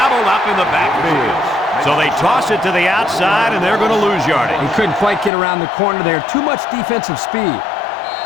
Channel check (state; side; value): drops out; right; at 5.3 s